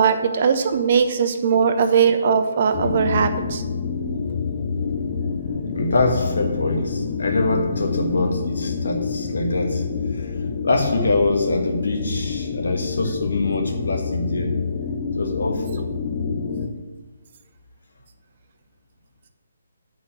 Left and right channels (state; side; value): inverted; both; correlation -0.69